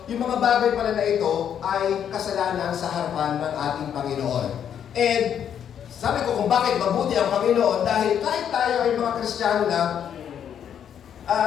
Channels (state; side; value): quieter; right; 8.9 dB